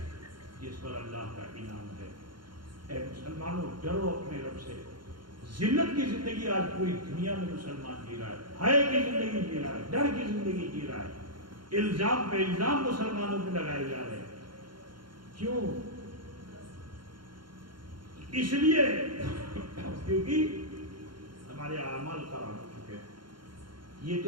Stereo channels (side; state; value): left; late; 0.72 ms